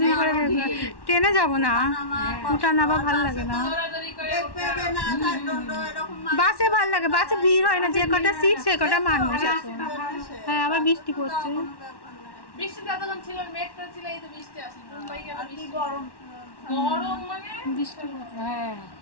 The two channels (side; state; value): right; late; 1.1 ms